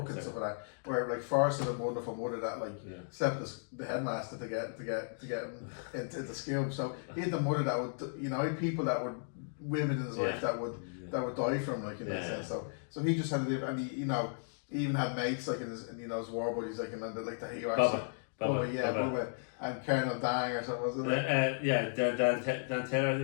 and stuff like that. Where like Forrest had a wonderful mother that like slept the headmaster to get him into school. So he had the mother that would, you know, he had people that would. Women in his life that would die from, like, in that sense. So he just had to live, and he, you know, he even had mates like in his war buddies, like, and like the hero. Bubba, and Colonel Dang or something, wasn't it? Dan Taylor, I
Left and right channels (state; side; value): silent; right; digital silence